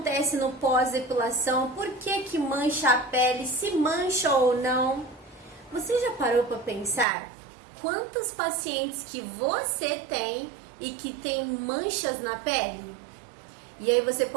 no pós-depilação? Por que mancha a pele? Se mancha ou não? Você já parou para pensar quantas pacientes que você tem e que tem manchas na pele? E aí você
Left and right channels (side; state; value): left; drops out; at 7.1 s